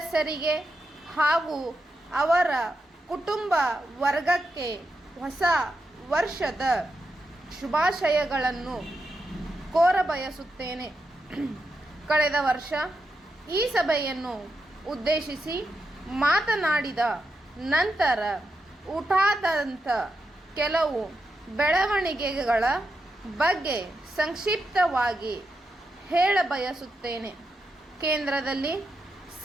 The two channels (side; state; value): both; normal; correlation 0.86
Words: ಹಾಗೂ ಅವರ ಕುಟುಂಬ ವರ್ಗಕ್ಕೆ ಹೊಸ ವರ್ಷದ ಶುಭಾಶಯಗಳನ್ನು ಕೋರಬಯಸುತ್ತೇನೆ. ಕಳೆದ ವರ್ಷ ಈ ಸಭೆಯನ್ನು ಉದ್ದೇಶಿಸಿ ಮಾತನಾಡಿದ ನಂತರ ಉಂಟಾದಂಥ ಕೆಲವು ಬೆಳವಣಿಗೆಗಳ ಬಗ್ಗೆ ಸಂಕ್ಷಿಪ್ತವಾಗಿ ಹೇಳಬಯಸುತ್ತೇನೆ. ಕೇಂದ್ರದಲ್ಲಿ